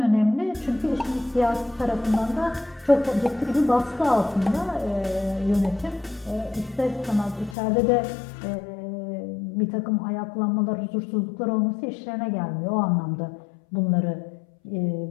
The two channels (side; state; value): right; drops out; at 7.6 s